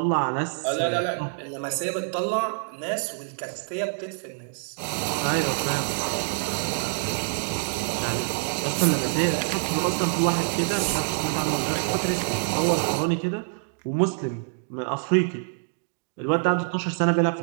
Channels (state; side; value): silent; left; digital silence